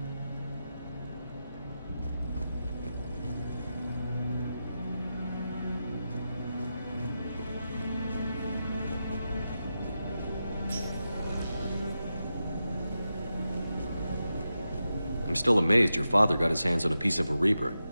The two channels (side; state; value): both; inverted; correlation -0.90